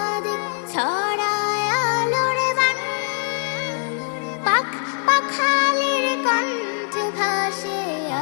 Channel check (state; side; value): silent; right; 56 dB below the other